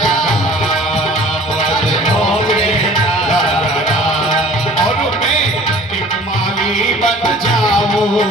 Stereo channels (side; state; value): both; normal; correlation 0.48